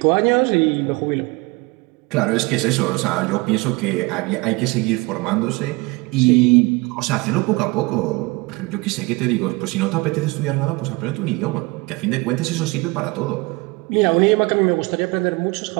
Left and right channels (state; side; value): quieter; left; 24.2 dB